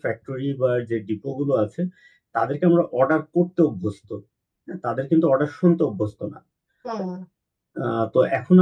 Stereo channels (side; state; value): both; identical; correlation 1.00